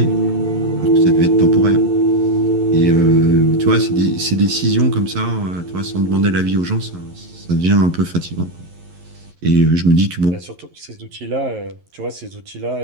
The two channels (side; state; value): left; late; 11 ms